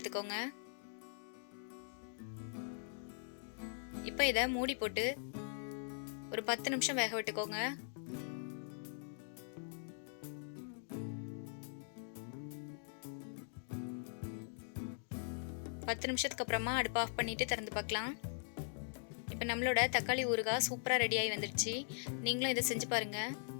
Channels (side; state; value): right; silent; digital silence